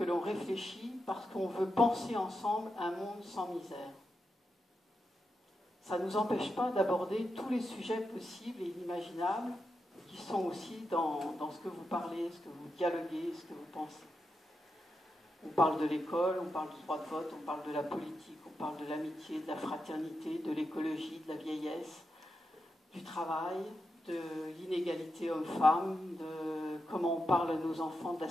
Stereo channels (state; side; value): normal; both; correlation 0.87